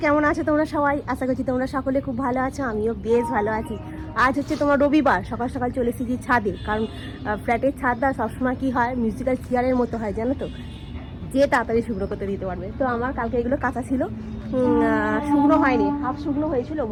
কেমন আছো তোমরা সবাই? আশা করছি তোমরা সকলে খুব ভালো আছো, আমিও বেশ ভালো আছি। আজ হচ্ছে তোমার রবিবার, সকাল সকাল চলে এসেছি ছাদে, কারণ ফ্ল্যাটের ছাদটা সবসময় কী হয়, মিউজিক্যাল চেয়ারের মতো হয় জানো তো, যে তাড়াতাড়ি শুকনো করতে দিতে পারবে। তো আমার কালকে এগুলো কাঁচা ছিল, শুকনো হয়নি, হাফ শুকনো হয়েছিল,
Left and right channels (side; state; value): both; identical; correlation 1.00